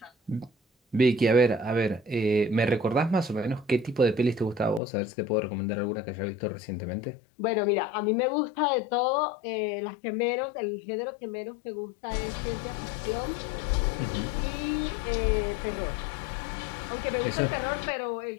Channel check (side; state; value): right; drops out; at 4.8 s